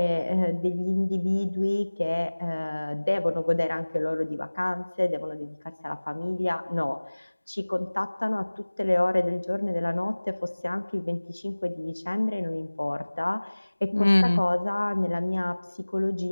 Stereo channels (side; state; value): both; inverted; correlation -1.00